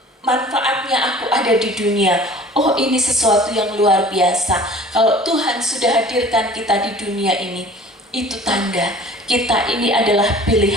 manfaatnya aku ada di dunia? Oh, ini sesuatu yang luar biasa. Kalau Tuhan sudah hadirkan kita di dunia ini, itu tanda kita ini adalah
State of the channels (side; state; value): both; normal; correlation 0.46